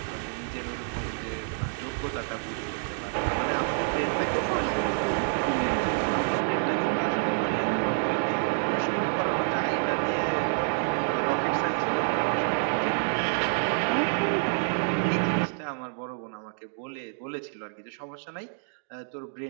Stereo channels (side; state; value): left; silent; 59 dB below the other